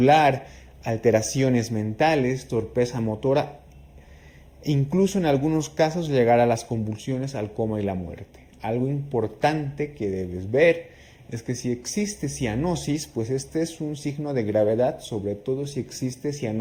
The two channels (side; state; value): both; identical; correlation 1.00